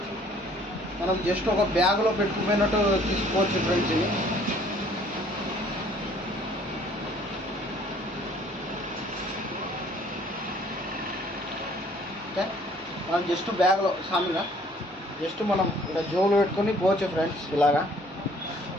మనం జస్ట్ ఒక బ్యాగ్లో పెట్టుకుపోయినట్టు తీసుకోవచ్చు ఫ్రెండ్స్. ఇది ఓకే, మనం జస్ట్ బ్యాగ్లో సామిగా జస్ట్ మనం ఇలా జోబులో పెట్టుకొని పోవచ్చు ఫ్రెండ్స్. ఇలాగా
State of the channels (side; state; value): both; normal; correlation 0.58